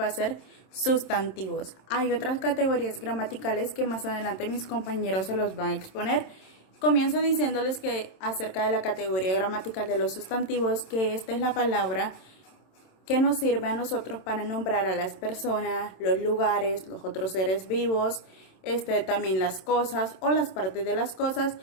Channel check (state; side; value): late; right; 27 ms